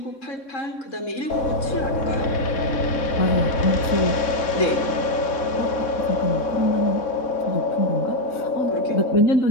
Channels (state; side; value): late; right; 3.6 ms